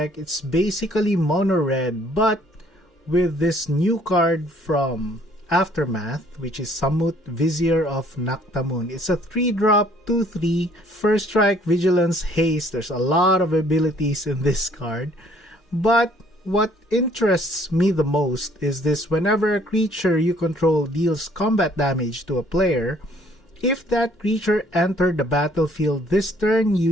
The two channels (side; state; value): both; normal; correlation 0.60